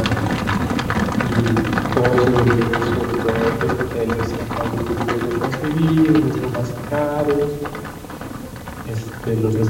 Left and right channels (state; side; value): identical; both; correlation 1.00